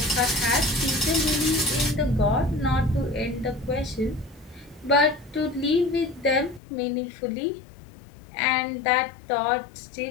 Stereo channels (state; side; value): drops out; right; at 6.6 s